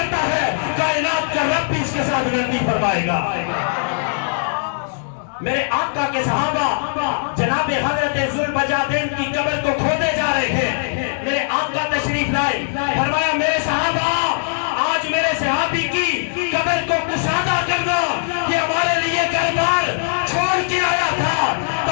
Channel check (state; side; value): silent; right; digital silence